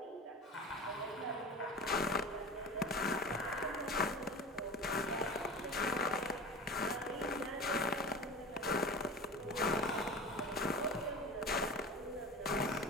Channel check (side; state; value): both; normal; correlation 0.33